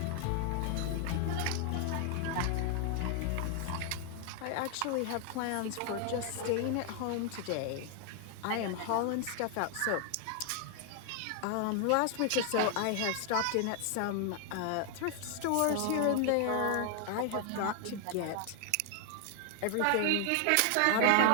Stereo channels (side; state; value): both; different; correlation 0.00